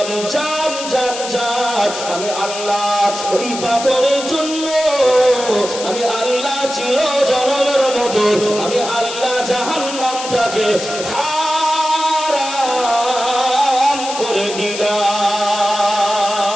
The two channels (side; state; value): left; noise; hiss, 8 dB below the sound